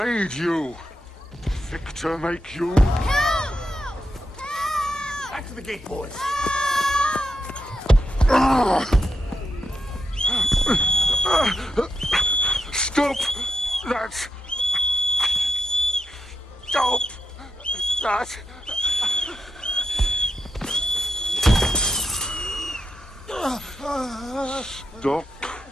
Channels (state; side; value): normal; both; correlation 0.85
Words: you? Victor make you? Help! Back to the gate, boys. Stop that! Stop that! Stop